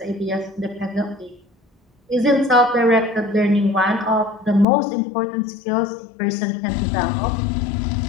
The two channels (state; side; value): drops out; right; at 4.7 s